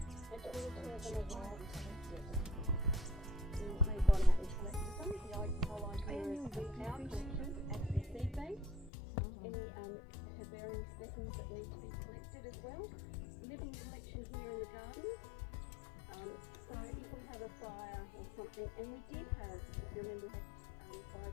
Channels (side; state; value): right; drops out; at 8.9 s